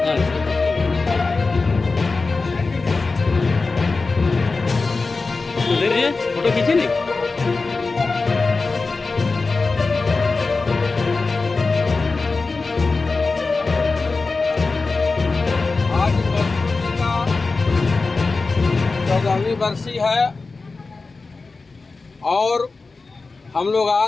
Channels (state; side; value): quieter; right; 3.9 dB